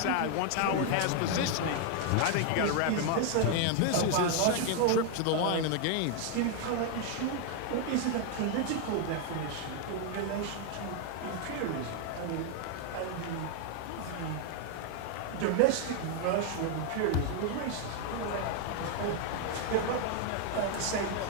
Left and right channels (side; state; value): both; different; correlation 0.00